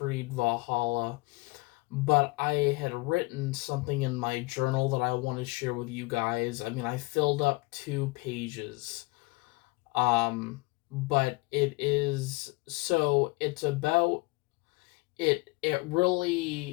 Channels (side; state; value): right; quieter; 23.8 dB